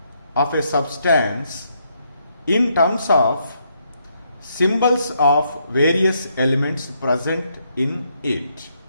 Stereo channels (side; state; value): both; inverted; correlation -0.75